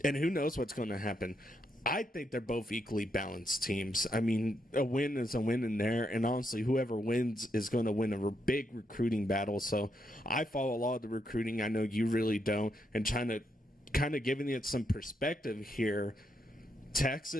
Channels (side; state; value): both; normal; correlation 0.79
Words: who knows what's going to happen. I think they're both equally balanced teams. I mean, a win is a win in there, and honestly, whoever wins is going to win a big recruiting battle. So I follow a lot of the recruiting. I know you really don't, and trying to kind of giving it some perspective here.